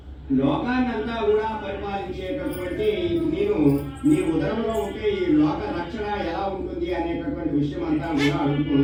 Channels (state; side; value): identical; both; correlation 1.00